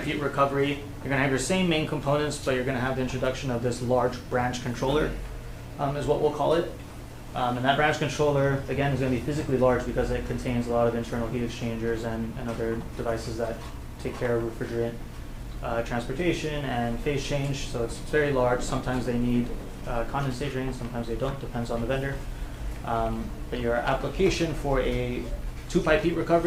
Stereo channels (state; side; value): identical; both; correlation 1.00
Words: heat recovery, you're going to have your same main components, but you're going to have the introduction of this large branch controller, is what we'll call it. And that branch controller, again, is going to be physically large because it contains a lot of internal heat exchangers and other devices that take care of refrigerant transportation and phase change. So it's very large. Sometimes they need condensate drains, sometimes they don't, depends on the vendor. But your application for a two-pipe heat